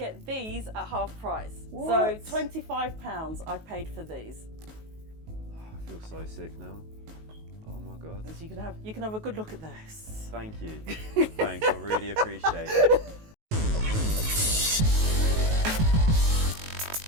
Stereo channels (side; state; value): left; late; 19 ms